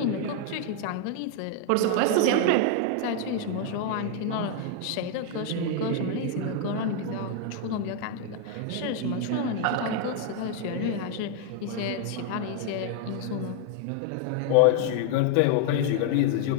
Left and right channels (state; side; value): different; both; correlation 0.00